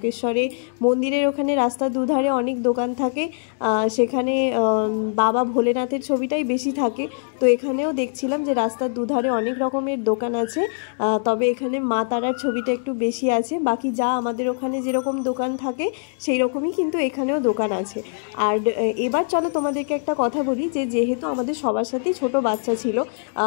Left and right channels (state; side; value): silent; right; digital silence